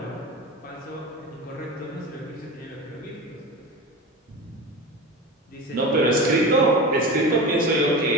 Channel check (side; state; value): both; normal; correlation 0.28